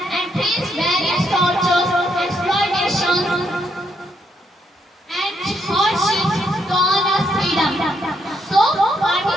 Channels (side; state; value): both; normal; correlation 0.76